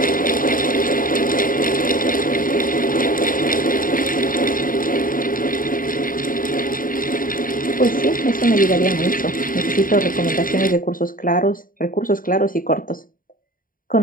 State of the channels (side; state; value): right; late; 0.40 ms